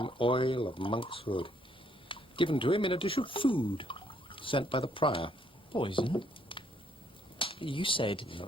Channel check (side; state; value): both; normal; correlation 0.69